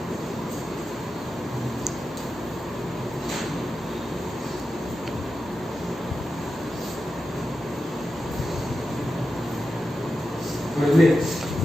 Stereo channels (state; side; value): normal; both; correlation 0.91